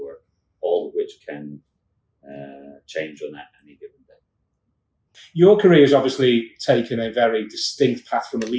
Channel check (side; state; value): both; identical; correlation 1.00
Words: all of which can change on any given day. Your career has obviously taken a very distinct path from a